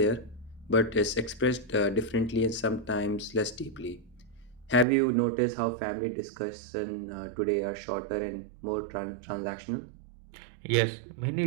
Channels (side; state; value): left; drops out; at 4.9 s